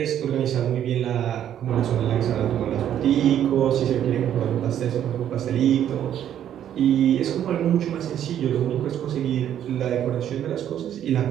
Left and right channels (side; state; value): left; quieter; 10.4 dB